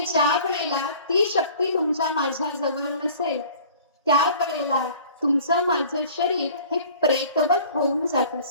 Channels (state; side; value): inverted; both; correlation -0.47